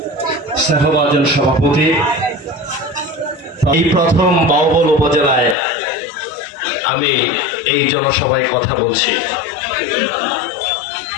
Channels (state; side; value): drops out; right; at 5.6 s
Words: স্নেহভাজন সভাপতি, এই প্রথম বাউবল উপজেলায় আমি এই জনসভায় কথা বলছি।